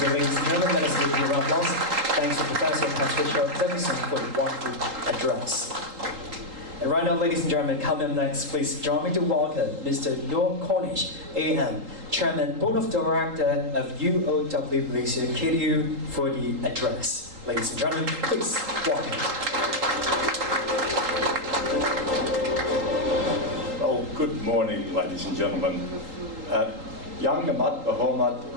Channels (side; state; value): left; late; 3.8 ms